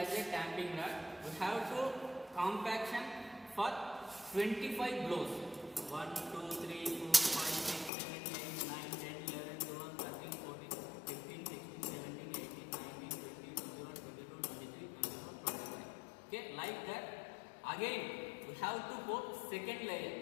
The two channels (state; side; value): drops out; right; at 7.9 s